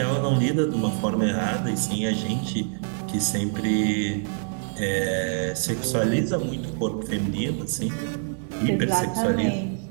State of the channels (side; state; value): left; silent; digital silence